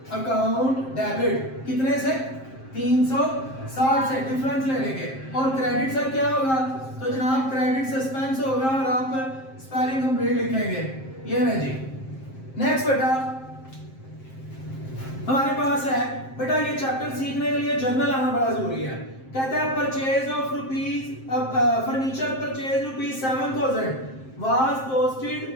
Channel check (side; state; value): right; late; 7.6 ms